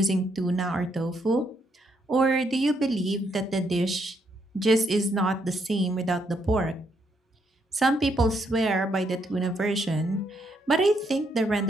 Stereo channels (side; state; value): both; normal; correlation 0.75